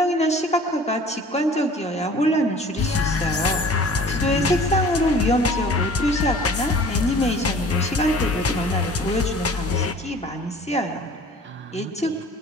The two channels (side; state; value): both; normal; correlation 0.47